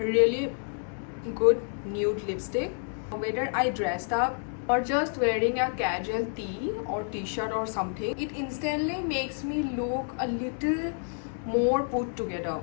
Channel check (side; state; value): right; silent; 59 dB below the other